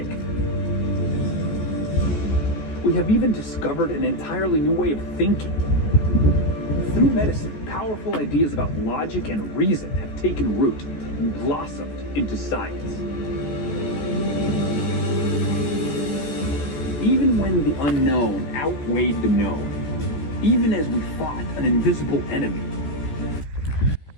We have even discovered an entirely new way of thinking. Through medicine, powerful ideas about logic and reason have taken root and blossomed into science. Even when the unknown outweighed the known, even as we fought an invisible enemy.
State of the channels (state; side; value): late; right; 14 ms